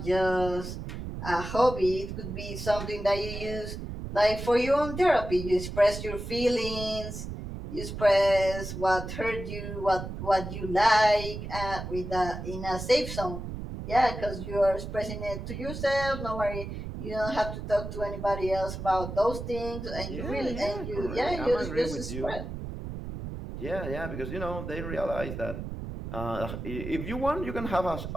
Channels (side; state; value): right; noise; rumble, 7 dB below the sound